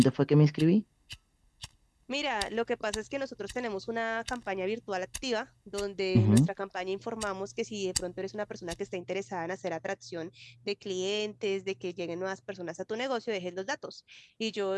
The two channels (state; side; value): identical; both; correlation 1.00